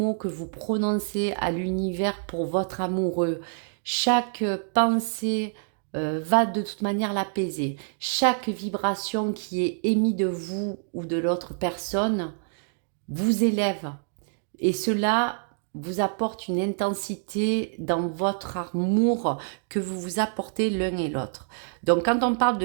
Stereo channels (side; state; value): left; silent; digital silence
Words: que vous prononcez à l'univers pour votre amoureux, chaque pensée va de toute manière l'apaiser. Chaque vibration qui est émise de vous ou de l'autre personne vous élève. Et cela vous apporte une intensité dans votre amour que vous vous apportez l'un et l'autre. Donc quand on parle